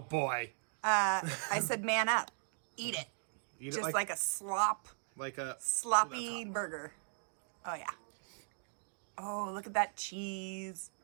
I said man up. Eat it. Eat Just it like a slop. like a Sloppy burger. Oh, yeah. Oh, look at that cheese.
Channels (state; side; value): silent; left; digital silence